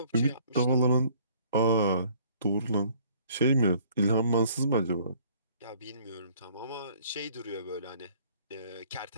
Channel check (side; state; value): both; inverted; correlation -0.58